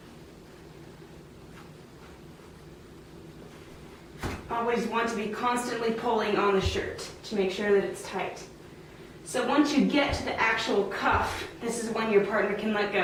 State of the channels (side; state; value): both; identical; correlation 1.00